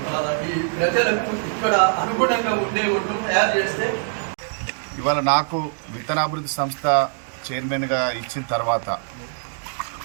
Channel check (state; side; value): silent; left; 63 dB below the other